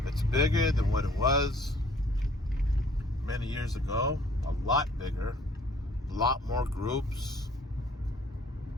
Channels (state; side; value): normal; both; correlation 0.57